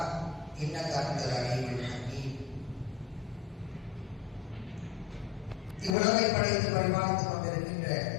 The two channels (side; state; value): right; drops out; at 6.0 s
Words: انك انت العليم الحكيم. இவ்வுலகை படைத்து பரிமாணித்துக் கொண்டிருக்கின்ற